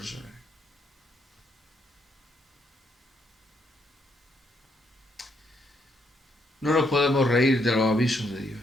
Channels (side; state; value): both; normal; correlation 0.74